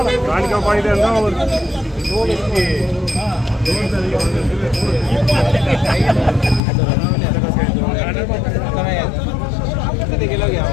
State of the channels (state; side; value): drops out; right; at 6.6 s